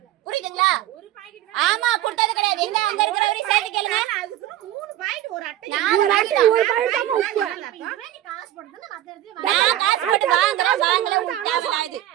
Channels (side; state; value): left; quieter; 13.3 dB